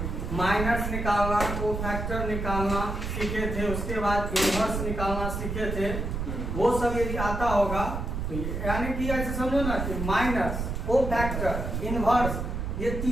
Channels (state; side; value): noise; right; rumble, 3 dB below the sound